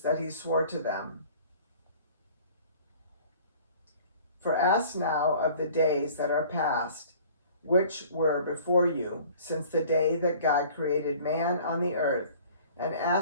that he swore to them. For ask now of the days that are past, which were before you, since the day that God created man on the earth, and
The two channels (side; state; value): both; inverted; correlation -0.50